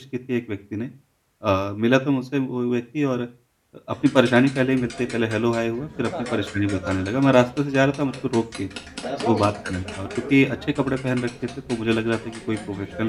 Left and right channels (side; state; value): both; identical; correlation 1.00